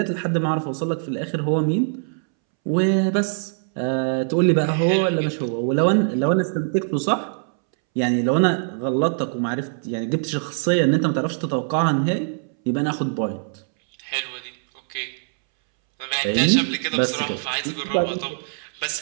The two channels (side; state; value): left; silent; 64 dB below the other